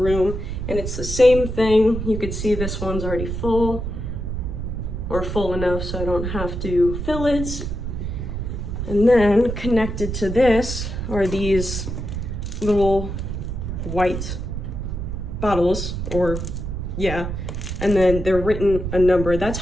and it's the same thing. You could see this one's already full, or full enough so I don't have to fill it. And then connected to this are these little white bottles, or yeah, and then they're written a number. That's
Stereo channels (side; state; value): right; noise; rumble, 4 dB below the sound